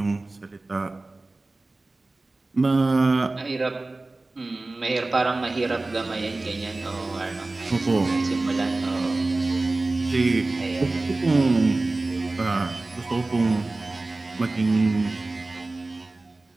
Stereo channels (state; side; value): quieter; left; 3.1 dB